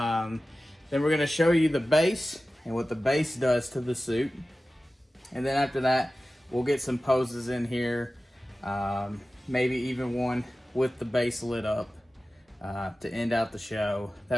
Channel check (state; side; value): normal; both; correlation 0.95